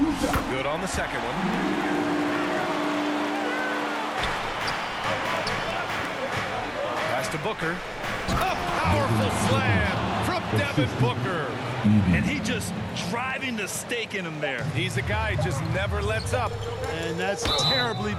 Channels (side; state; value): both; identical; correlation 1.00